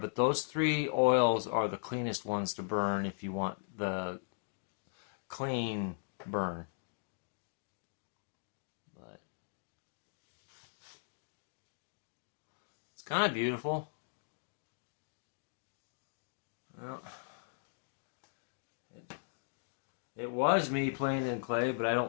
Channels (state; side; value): silent; right; digital silence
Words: those 3 oils are the cleanest ones to burn if you want the clean burn. But it's kind of beautiful. Well, it was me playing in clay, but I